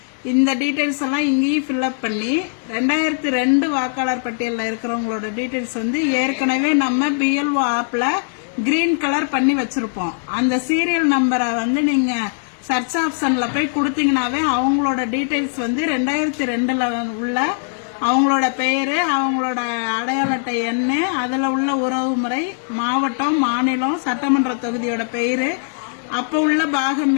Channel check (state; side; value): silent; right; digital silence